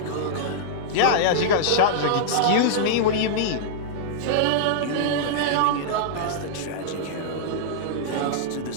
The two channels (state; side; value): different; both; correlation -0.02